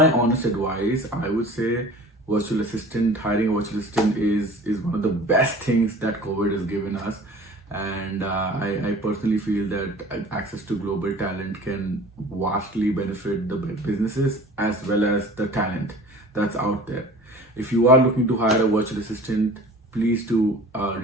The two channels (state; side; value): normal; both; correlation 0.43